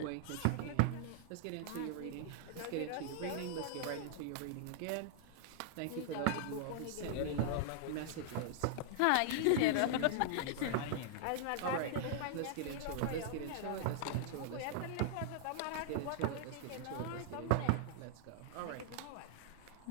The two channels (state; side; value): different; both; correlation -0.01